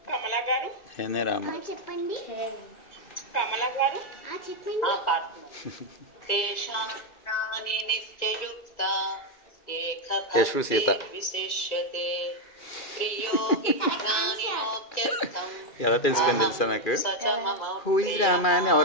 కమలా గారు చెప్పండి. కమలా గారు చెప్పండి. తేషాం జ్ఞాని నిత్యయుక్త ఏక విశిష్యతే ప్రియో హి జ్ఞానినోత్యర్థం ఎలా తెలుసుకొని తెలుసా నాకు? సచ మమ హూ ఇస్ రామా అని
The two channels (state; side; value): late; right; 2.4 ms